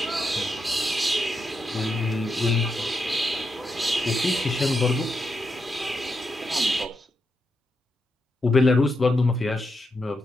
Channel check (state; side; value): normal; both; correlation 0.84